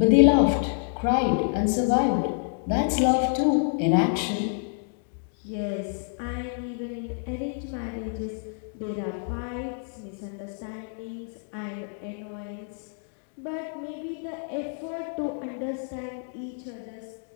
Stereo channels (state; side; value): silent; right; 60 dB below the other